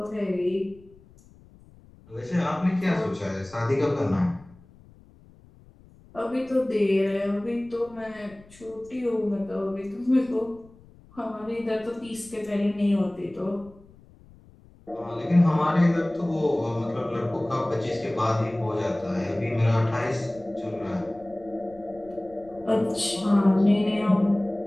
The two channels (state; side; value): noise; left; rumble, 25 dB below the sound